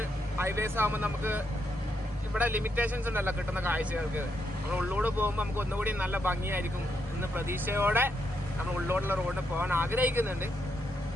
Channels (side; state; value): both; normal; correlation 0.80